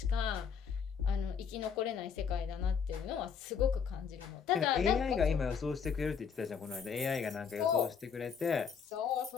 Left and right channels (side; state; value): right; quieter; 6.7 dB